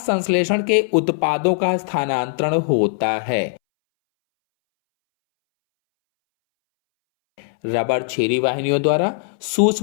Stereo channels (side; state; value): right; silent; 65 dB below the other